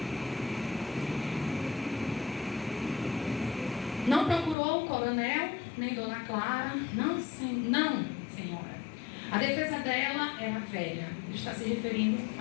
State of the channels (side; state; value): right; drops out; at 4.5 s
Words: Não procurou o coronel, nem Dona Clara, não, senhora. A defesa dela era velha, ele está se referindo